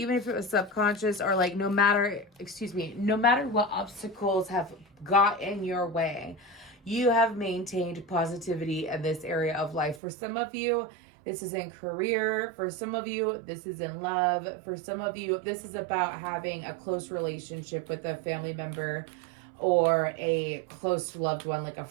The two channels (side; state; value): left; drops out; at 10.0 s